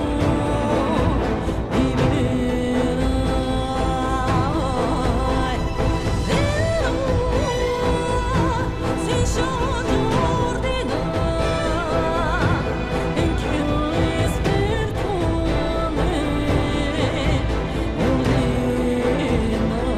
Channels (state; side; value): identical; both; correlation 1.00